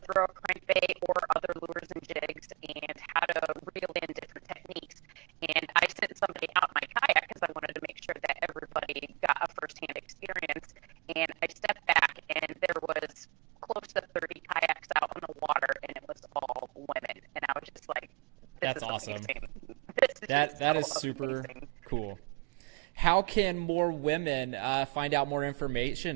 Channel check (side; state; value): left; quieter; 25.2 dB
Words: throw a crankbait or other lures and jigs and how to reel in different techniques. And I sent somebody out my kayak because I wanted to make sure that everybody got a firsthand experience. And I stepped back and there was close to 30 kayaks out on the water, and it was all women. And I was just like, this is awesome. Amazing. That is super amazing. Cool. How can more women find out more